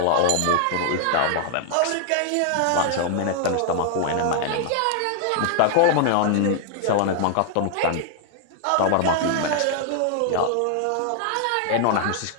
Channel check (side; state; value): both; different; correlation 0.00